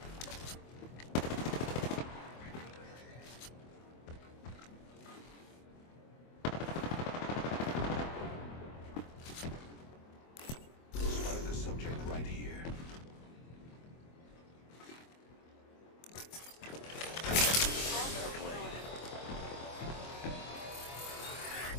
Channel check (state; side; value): late; right; 24 ms